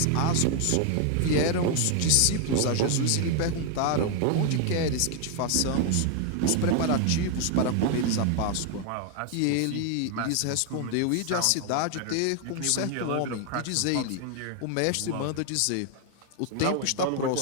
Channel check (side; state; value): both; different; correlation 0.00